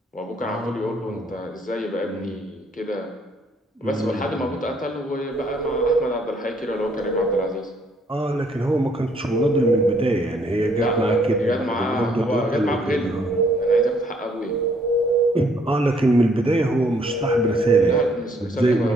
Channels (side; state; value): both; normal; correlation 0.66